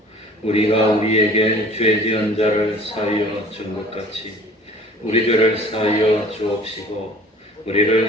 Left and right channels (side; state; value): both; normal; correlation 0.48